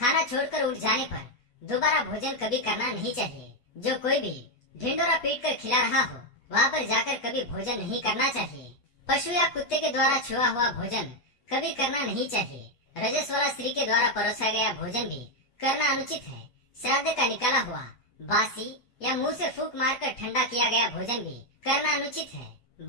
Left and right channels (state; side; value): late; right; 8.2 ms